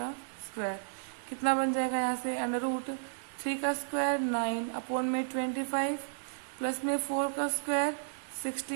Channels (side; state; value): left; silent; digital silence